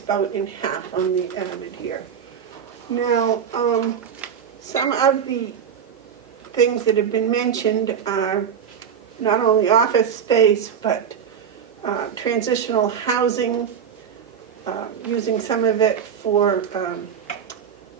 about in half on the end here. Now, some of the things that have been mentioned are not only office space, but transitional housing, using some of it for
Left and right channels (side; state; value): left; quieter; 7.7 dB